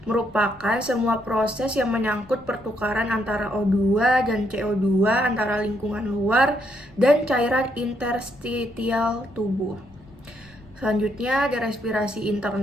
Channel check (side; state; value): left; noise; rumble, 25 dB below the sound